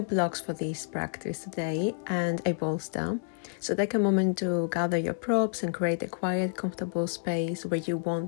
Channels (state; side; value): silent; right; digital silence